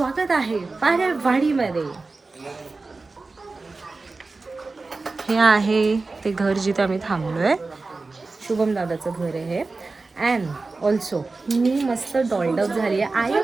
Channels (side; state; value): left; quieter; 3.7 dB